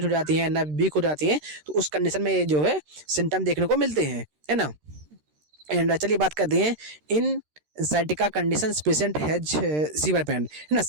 हो जाती हैं, नर्व वीक हो जाती हैं, तो उस कंडीशन में ये जो है सिम्टम देखने को मिलते हैं, है ना। एंड चलिए बात करते हैं इन sciatica condition patient has severe pain, है ना।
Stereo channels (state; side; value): late; left; 13 ms